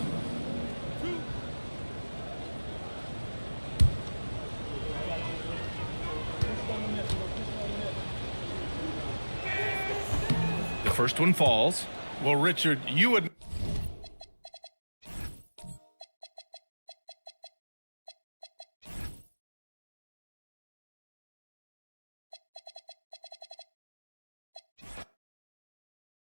The first one falls. Well, Richard, you would...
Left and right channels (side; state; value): both; inverted; correlation -1.00